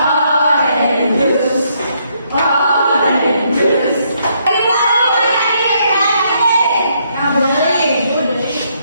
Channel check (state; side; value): inverted; both; correlation -0.73